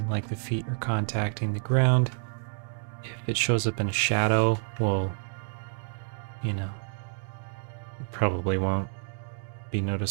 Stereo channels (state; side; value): silent; left; 59 dB below the other